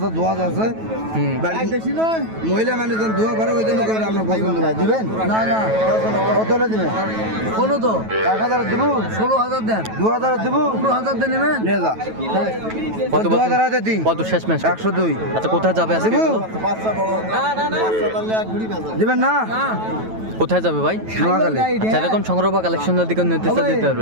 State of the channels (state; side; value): late; left; 9.2 ms